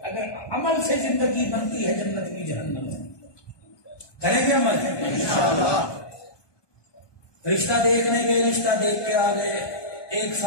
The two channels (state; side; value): late; right; 1.2 ms